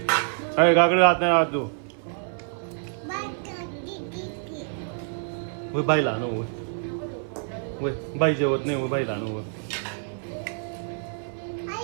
अरे काकडी राहत नाही राहत तू बाईला आणू वय बाई जेवत नाही बाईला आणू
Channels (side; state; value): left; silent; 56 dB below the other